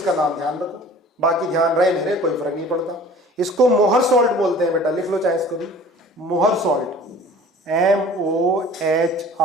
नाम ध्यान रखो, बाकी ध्यान रहे नहीं रहे कोई फर्क नहीं पड़ता। इसको मोहर सॉल्ट बोलते हैं बेटा, लिख लो चाहे इसको भी, मोहर सॉल्ट, MOHR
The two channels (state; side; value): normal; both; correlation 0.46